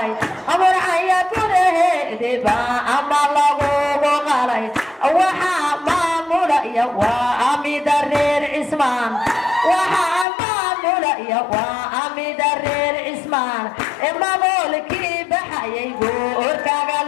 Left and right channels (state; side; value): drops out; right; at 10.2 s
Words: murcaya gudaheediba ama lagugu qalay waxaa maamulaya waa amida reer cismaan waxaa maamulaya waa amida reer cismaan mamoolkii baxayay goorkaga